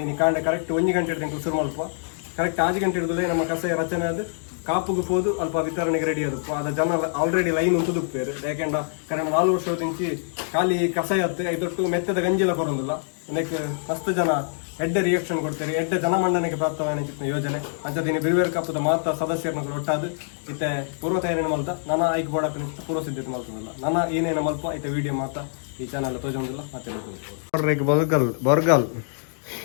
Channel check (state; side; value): silent; right; digital silence